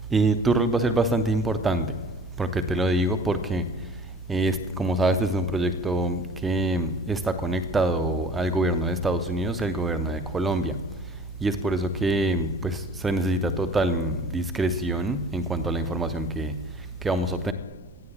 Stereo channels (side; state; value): right; noise; rumble, 21 dB below the sound